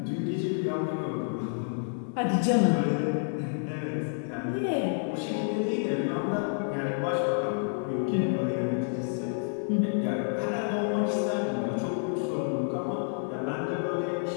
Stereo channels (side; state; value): right; silent; digital silence